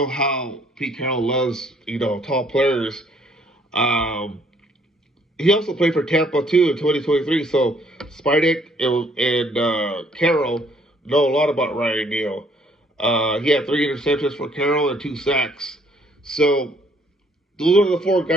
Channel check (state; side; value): normal; both; correlation 0.64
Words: how Pete Carroll loves, tall players. He also played for Tampa too in 2023. So Spytek and Carroll know a lot about Ryan Neal. He had 3 interceptions for Carroll and 2 sacks. So those are the 4